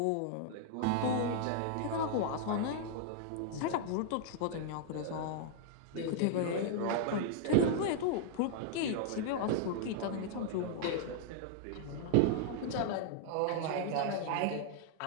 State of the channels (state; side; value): different; both; correlation -0.01